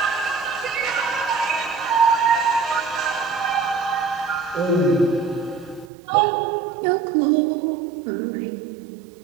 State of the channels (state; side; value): drops out; left; at 5.9 s